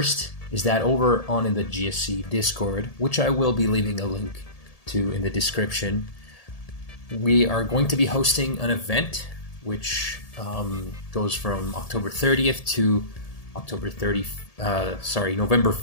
is that over on in the GSC Discord, which I will be leaving a link to in the description, we are going to be hosting an event which goes from October 30th to November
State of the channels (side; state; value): right; late; 1.7 ms